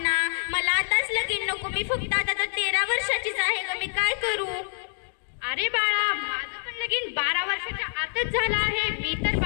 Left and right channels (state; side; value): silent; right; digital silence